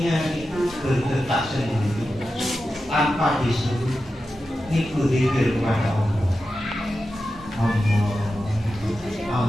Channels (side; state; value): both; normal; correlation 0.91